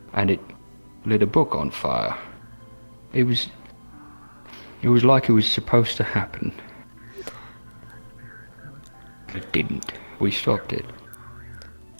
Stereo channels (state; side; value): inverted; both; correlation -1.00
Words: and it lit a book on fire. It was like it was supposed to happen. It didn't. We stopped it.